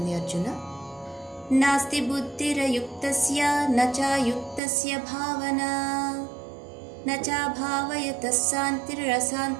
అర్జున. నాస్తి బుద్ధిరయుక్తస్య నచాయుక్తస్య భావనా నచా భావయతః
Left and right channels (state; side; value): drops out; left; at 4.6 s